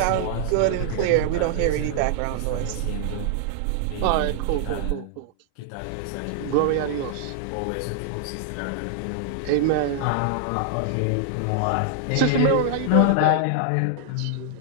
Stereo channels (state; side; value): different; both; correlation 0.00